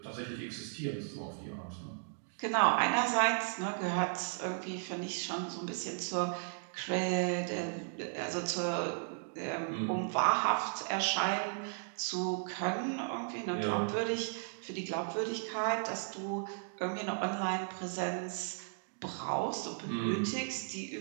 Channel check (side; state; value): left; silent; digital silence